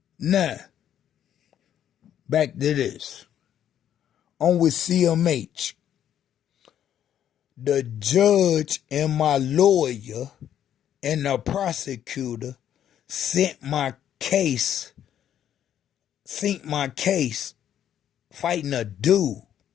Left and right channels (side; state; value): right; quieter; 10.3 dB